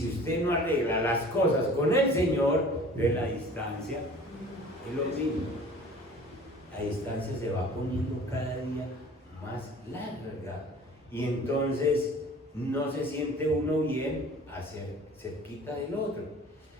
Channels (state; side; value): normal; both; correlation 0.46